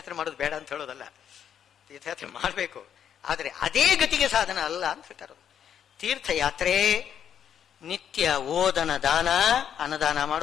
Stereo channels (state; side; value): quieter; right; 8.9 dB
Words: ಮಾಡೋದು ಬೇಡ ಅಂತ ಹೇಳೋದಲ್ಲ, ತೀರ್ಥಯಾತ್ರೆ ಮಾಡಬೇಕು. ಆದರೆ ಅದೇ ಗತಿಗೆ ಸಾಧನ ಅಲ್ಲ ಅಂತ ಹೇಳ್ತಾರೆ. ತೀರ್ಥಯಾತ್ರೆ ನಿತ್ಯ ಓದನ ದಾನ, ಅನ್ನದಾನ